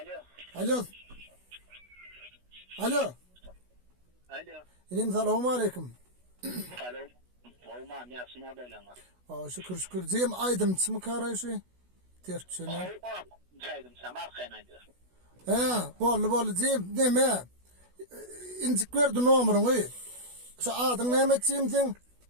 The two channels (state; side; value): late; left; 16 ms